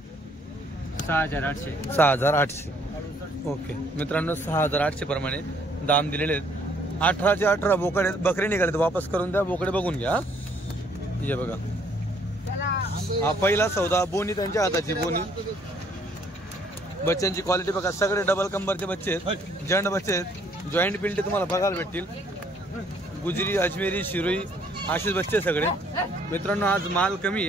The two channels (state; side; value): normal; both; correlation 0.64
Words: 6,800. 6,800. ओके मित्रांनो, 6,800 प्रमाणे दाम दिलेले आहेत. 18चे 18 बोकडे बकरे निघाले, वापस करून द्या. बोकडे बघून घ्या. हे बघा, हा पहिला सौदा. बोनी त्यांच्या हाताची बोनी. बच्चांची क्वालिटी बघा, सगळे डबल कंबरचे बच्चे आहेत, जंड बच्चे आहेत. जॉईंट पिल्टे तुम्हाला बघायला भेटतील. गुजरी, अजमेरी, शिरोई असेच बच्चे सगळे. मित्रांनो आज माल कमी